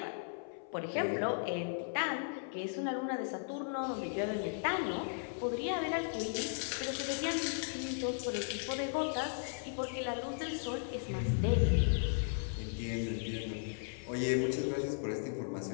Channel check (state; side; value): silent; right; 54 dB below the other